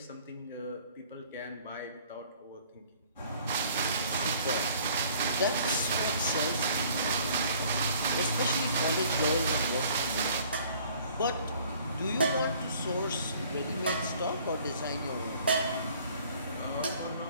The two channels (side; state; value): both; inverted; correlation -0.55